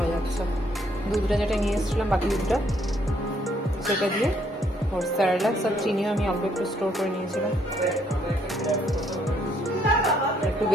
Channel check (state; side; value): normal; both; correlation 0.69